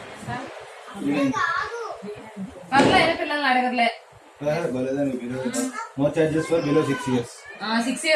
పిల్లల్ని అడగర్లే. No charges for below 6 years. 6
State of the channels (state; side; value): identical; both; correlation 1.00